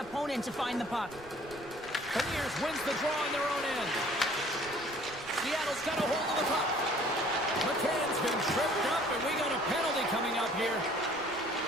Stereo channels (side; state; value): right; noise; rumble, 23 dB below the sound